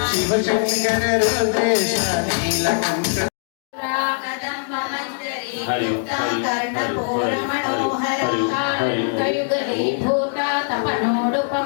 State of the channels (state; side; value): silent; right; digital silence